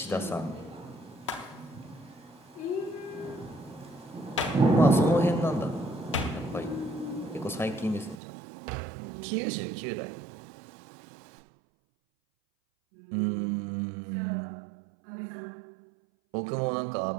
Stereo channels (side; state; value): left; drops out; at 8.2 s